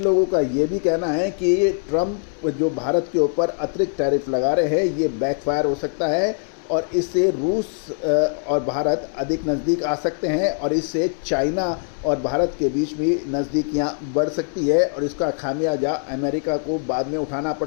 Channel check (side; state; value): right; silent; 64 dB below the other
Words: लोगों का ये भी कहना है कि ट्रंप जो भारत के ऊपर अतिरिक्त टैरिफ लगा रहे हैं, ये बैकफायर हो सकता है और इससे रूस और भारत अधिक नज़दीक आ सकते हैं और इससे चाइना और भारत के बीच भी नज़दीकियां बढ़ सकती है और इसका खामियाजा अमेरिका को बाद में उठाना